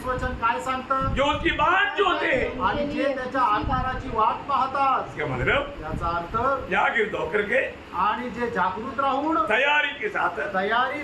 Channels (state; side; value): identical; both; correlation 1.00